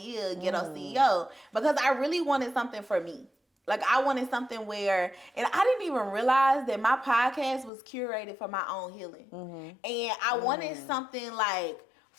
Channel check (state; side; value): drops out; right; at 7.7 s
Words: Ghetto CEO, because I really wanted something for me. Like, I wanted something where, and I didn't even realize that my podcast was curated for my own healing. And I wanted something like